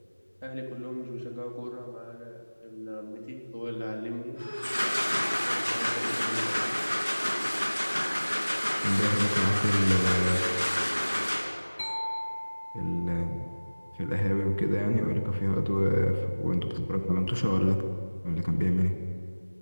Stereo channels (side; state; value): both; inverted; correlation -1.00